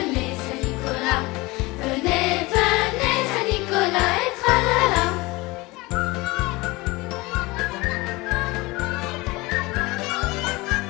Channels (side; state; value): right; quieter; 22.5 dB